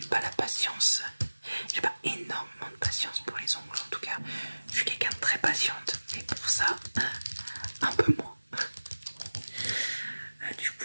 pas la patience, j'ai pas énormément de patience pour les ongles en tout cas. Je suis quelqu'un de très patiente, mais pour ça, un peu moins. Du coup,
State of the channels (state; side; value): inverted; both; correlation -1.00